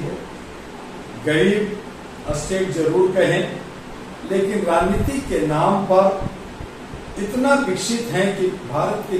है। गरीब स्टेट जरूर कहें, लेकिन राजनीति के नाम पर इतना विकसित है कि भारत के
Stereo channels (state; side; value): identical; both; correlation 1.00